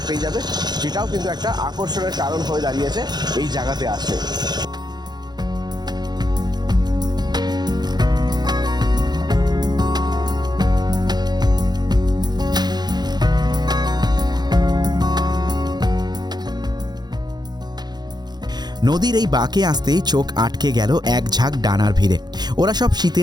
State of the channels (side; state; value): left; late; 0.20 ms